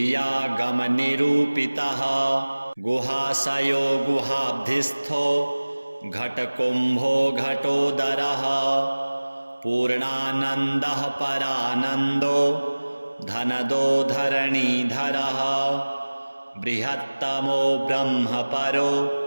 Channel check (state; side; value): inverted; both; correlation -1.00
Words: गुहाशयो गुहाब्धिस्थो घटकुम्भो घटोदरः पूर्णानन्दः परानन्दो धनदो धरणीधरः बृहत्तमो ब्रह्मपरो